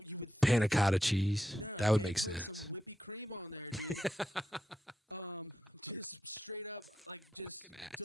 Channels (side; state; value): both; normal; correlation 0.84